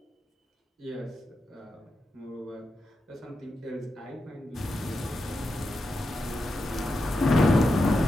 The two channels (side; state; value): both; normal; correlation 0.88